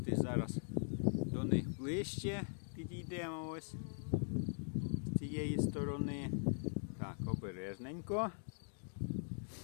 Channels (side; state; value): right; silent; digital silence